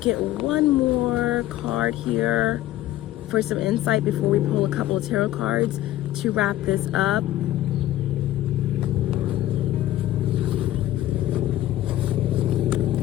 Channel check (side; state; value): right; quieter; 14.4 dB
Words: one more card here for some insight before we pull a couple of tarot cards to wrap this up.